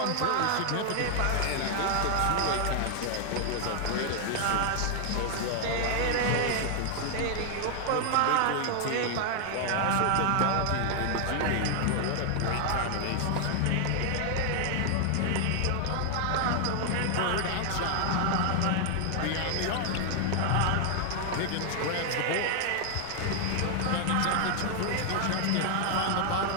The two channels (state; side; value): different; both; correlation 0.00